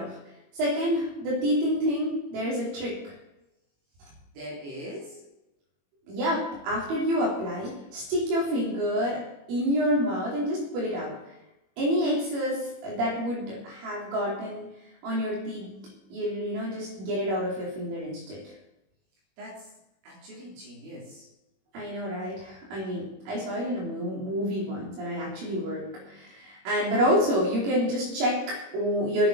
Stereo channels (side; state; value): left; late; 21 ms